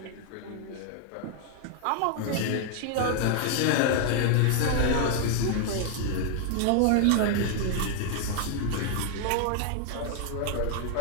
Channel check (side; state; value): both; different; correlation 0.00